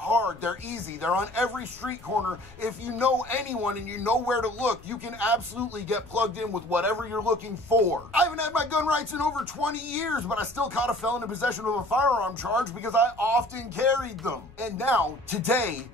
They're easy. They're on every street corner. If you know anyone and you know where to look, you can absolutely get plugged in with whatever you're looking for. I haven't had my gun rights in over 20 years, but I still caught a felon in possession of a firearm charge because I often carried them. And now, today,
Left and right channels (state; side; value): noise; left; rumble, 22 dB below the sound